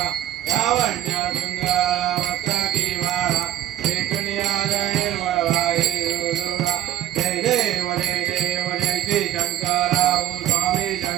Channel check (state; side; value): quieter; left; 12.6 dB